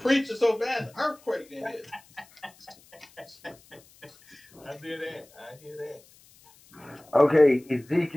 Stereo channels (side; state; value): left; noise; hiss, 27 dB below the sound